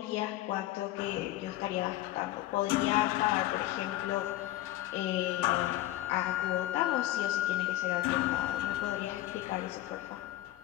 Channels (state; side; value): quieter; right; 15.4 dB